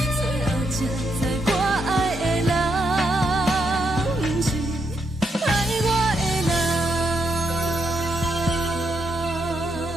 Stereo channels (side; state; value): both; normal; correlation 0.78